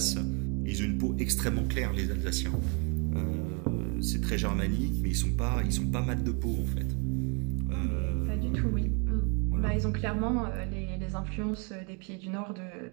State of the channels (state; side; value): quieter; left; 34.9 dB